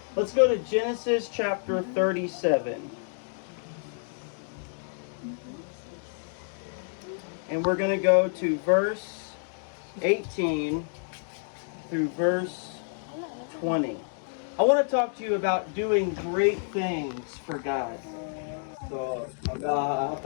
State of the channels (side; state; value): right; silent; digital silence